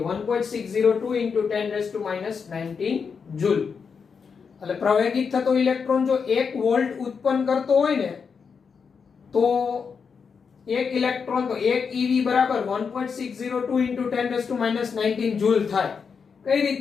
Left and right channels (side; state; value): right; quieter; 5.9 dB